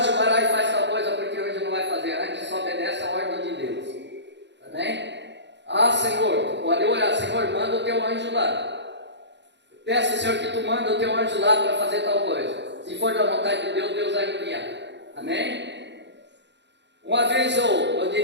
vai lá e faz tal coisa, porque o anjo não vai fazer. Antes só obedece a ordem de Deus. Amém? Senhor, pode orar: Senhor, manda o teu anjo lá. Peça, Senhor, que tu manda o teu anjo lá para fazer tal coisa. Se for da vontade de Deus, Deus vai enviar. Amém? Uma vez eu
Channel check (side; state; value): left; late; 0.51 ms